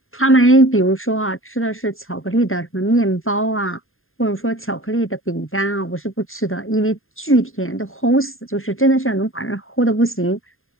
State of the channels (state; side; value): late; right; 0.60 ms